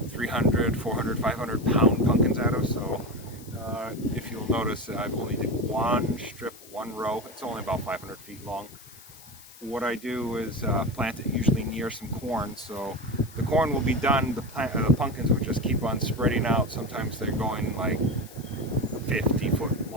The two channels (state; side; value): noise; left; hiss, 20 dB below the sound